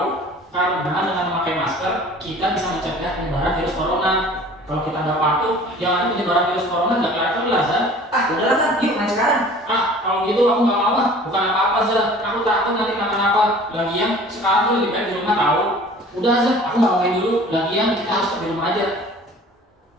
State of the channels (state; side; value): normal; both; correlation 0.47